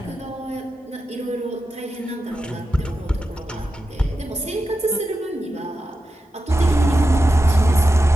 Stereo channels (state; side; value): normal; both; correlation 0.90